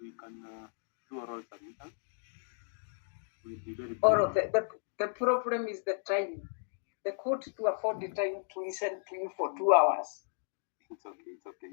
can do oral submissions. The problem is the time. The court to afford the time to listen to you for 2 hours. It's okay.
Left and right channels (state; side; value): silent; right; digital silence